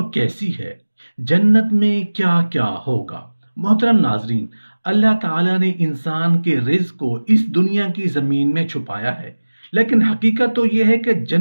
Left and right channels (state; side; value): inverted; both; correlation -1.00